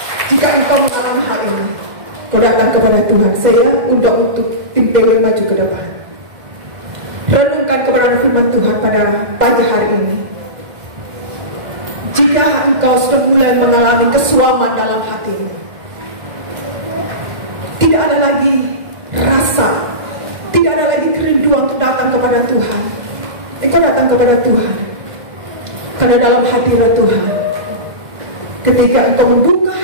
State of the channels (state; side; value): late; left; 2.0 ms